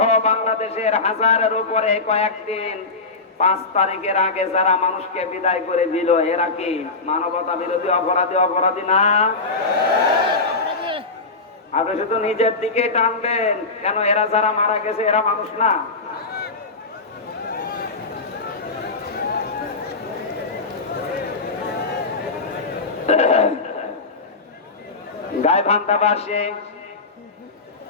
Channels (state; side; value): quieter; right; 3.8 dB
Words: বাংলাদেশের হাজারের উপরে কয়েকদিন 5 তারিখের আগে যারা মানুষকে বিদায় করে দিল, এরা কি মানবতা বিরোধী অপরাধী না? আপনি শুধু নিজের দিকে টানবেন কেন? এরা যারা মারা গেছে এরা মানুষ না? গাইবান্ধাবাসী